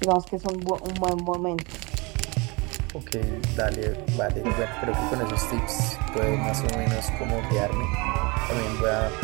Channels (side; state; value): left; quieter; 27.4 dB